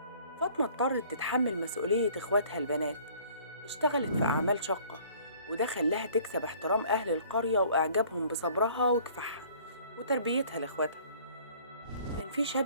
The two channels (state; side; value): inverted; both; correlation -0.54